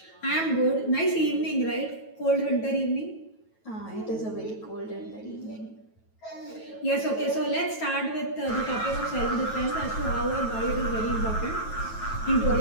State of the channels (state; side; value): late; right; 9.2 ms